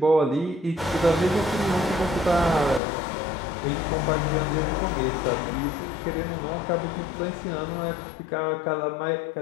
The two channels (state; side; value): drops out; right; at 2.8 s